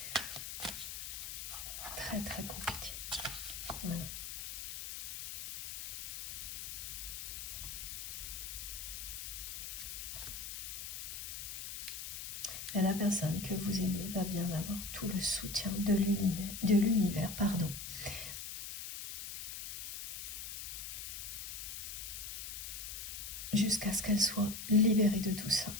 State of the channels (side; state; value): left; noise; hiss, 7 dB below the sound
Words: Très très compliqué. Voilà. Et la personne que vous aimez va bien avoir tout le soutien de l'univers, jusqu'à ce qu'elle soit libérée de tout ça.